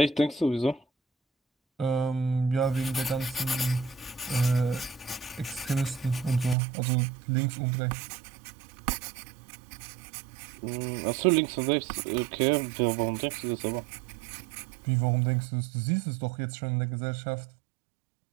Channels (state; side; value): drops out; left; at 6.6 s